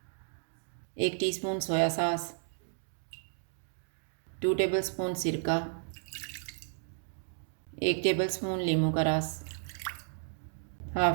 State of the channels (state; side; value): silent; left; digital silence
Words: 1 टीस्पून सोया सॉस, 2 टेबलस्पून सिरका, 1 टेबलस्पून नींबू का रस,